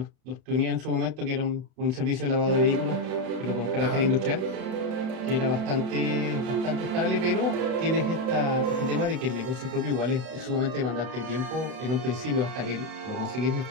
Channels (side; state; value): left; late; 32 ms